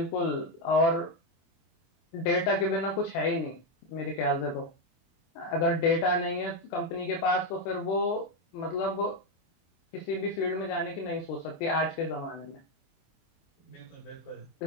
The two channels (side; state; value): right; late; 24 ms